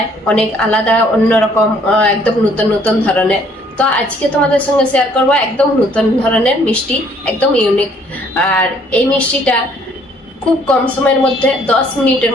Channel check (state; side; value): normal; both; correlation 0.62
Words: অনেক আলাদা অন্যরকম একদম নতুন নতুন ধরনের। তো আজকে তোমাদের সঙ্গে শেয়ার করব একদম নতুন ধরনের মিষ্টি, একদম ইউনিক। আর এই মিষ্টিটা খুব কম সময়ের মধ্যে 10 মিনিটের